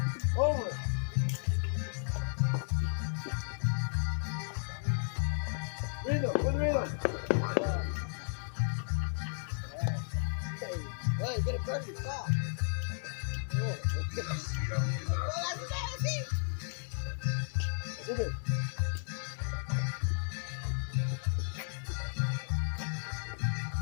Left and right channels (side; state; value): right; silent; 55 dB below the other